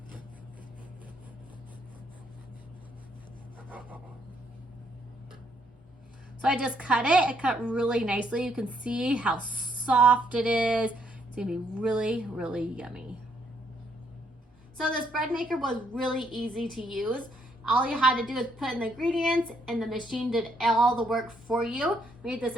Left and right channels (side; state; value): both; normal; correlation 0.71